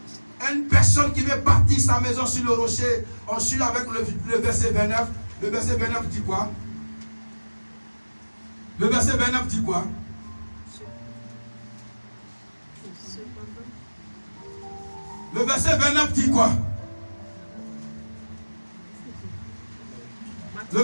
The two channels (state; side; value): inverted; both; correlation -1.00